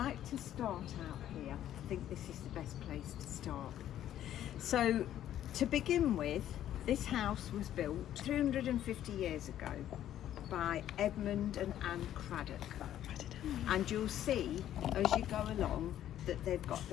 to start out here. I think this is the best place to start. So to begin with, this house was built 350 years ago by Edmund and Anne Craddock. And you'll see as you go along that they've got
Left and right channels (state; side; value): quieter; right; 11.7 dB